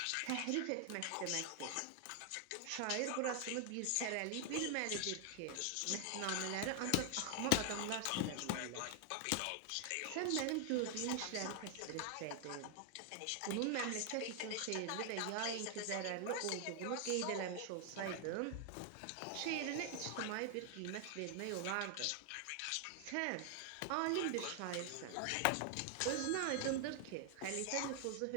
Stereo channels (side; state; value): both; different; correlation 0.00